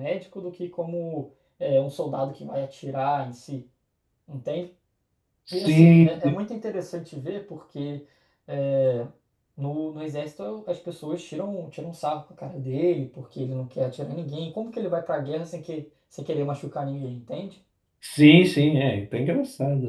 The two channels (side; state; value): both; identical; correlation 1.00